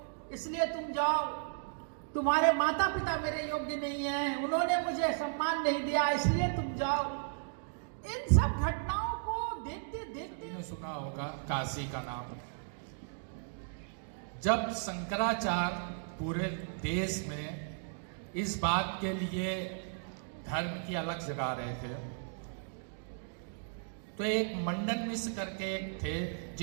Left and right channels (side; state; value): left; silent; digital silence